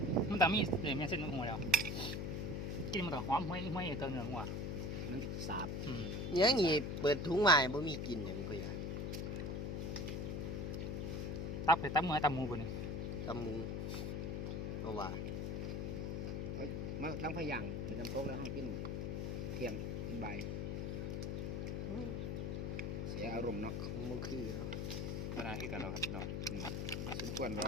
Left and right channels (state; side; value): noise; left; hum, 1 dB below the sound